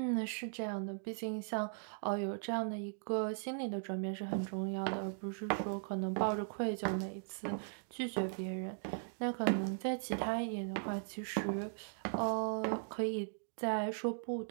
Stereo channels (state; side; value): silent; left; digital silence